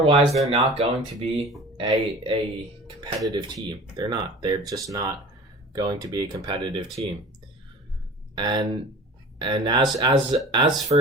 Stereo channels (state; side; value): normal; both; correlation 0.41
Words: they're not going to be a competitive team. They're not. They're just not going to be a competitive team. And as